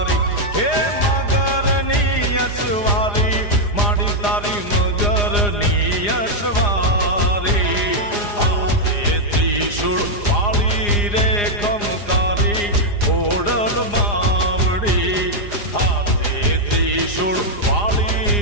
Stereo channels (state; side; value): late; right; 4.9 ms